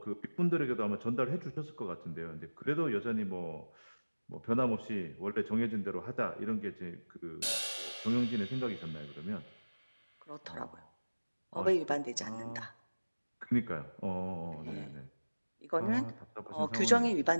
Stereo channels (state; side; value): inverted; both; correlation -1.00